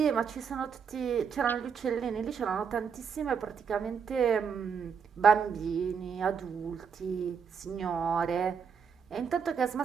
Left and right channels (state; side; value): quieter; left; 6.6 dB